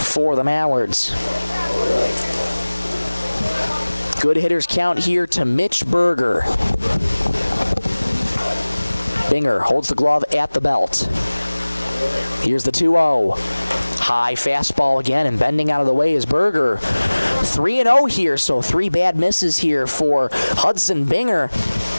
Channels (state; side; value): inverted; both; correlation -1.00